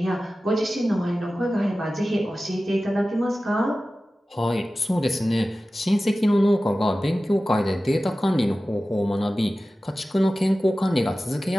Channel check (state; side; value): normal; both; correlation 0.95